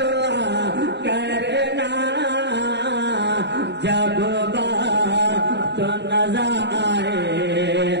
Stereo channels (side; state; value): left; late; 0.50 ms